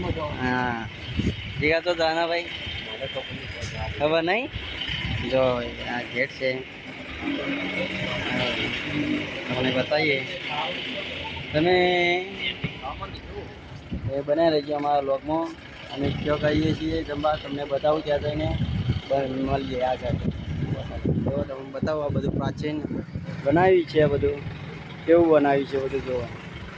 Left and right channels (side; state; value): both; identical; correlation 1.00